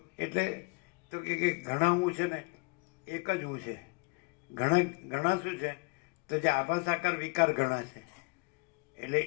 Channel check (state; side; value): quieter; right; 29.3 dB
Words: એટલે તો કે ઘણા હું છે ને એક જ હું છે. ઘણા શું છે? તો જે આભાસ આકાર વિકાર ઘણા છે. એટલે